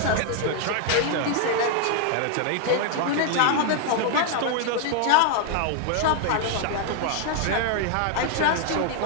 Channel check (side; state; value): both; different; correlation 0.00